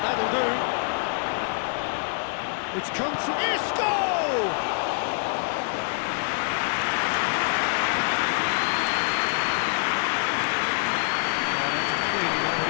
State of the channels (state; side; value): silent; right; digital silence